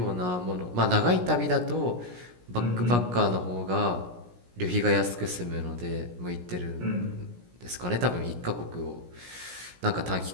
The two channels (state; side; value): late; left; 17 ms